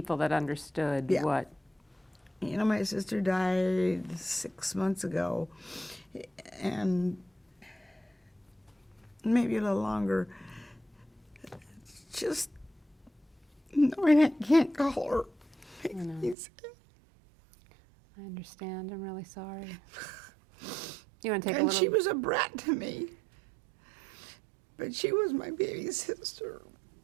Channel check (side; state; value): left; drops out; at 16.4 s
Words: that understood Yeah. what. You know, my sister died 6 months ago, and maybe a little longer. Just knowing I can't call her makes me sad. I understand. I'm really sorry. You want to take a And little... she was a brat to me. But she was my baby sister.